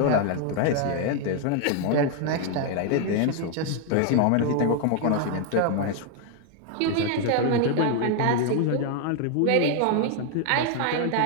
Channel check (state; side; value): different; both; correlation 0.00